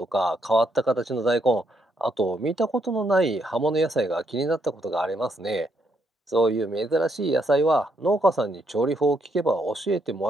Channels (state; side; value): normal; both; correlation 0.75